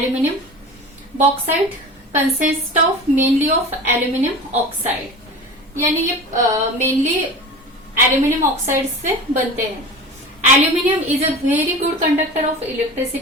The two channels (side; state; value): both; normal; correlation 0.33